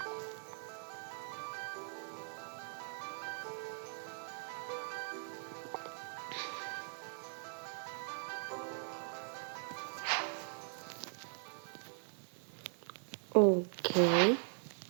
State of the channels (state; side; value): silent; left; 51 dB below the other